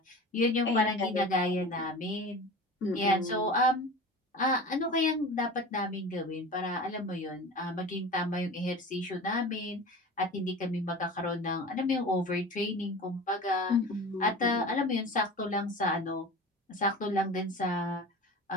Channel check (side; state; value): both; normal; correlation 0.35